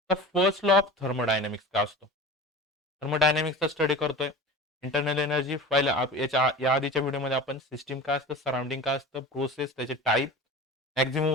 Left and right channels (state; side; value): normal; both; correlation 0.34